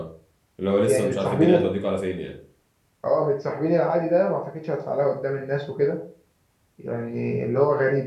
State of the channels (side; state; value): both; identical; correlation 1.00